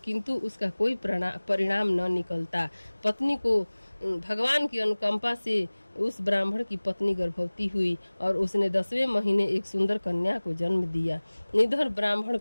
उसका कोई परिणाम न निकलता। पत्नी को भगवान की अनुकंपा से उस ब्राह्मण की पत्नी गर्भवती हुई और उसने 10वें महीने एक सुंदर कन्या को जन्म दिया। निधर ब्राह्मण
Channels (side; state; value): both; inverted; correlation -1.00